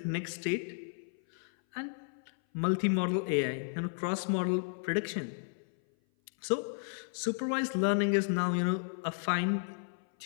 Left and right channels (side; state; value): right; silent; 56 dB below the other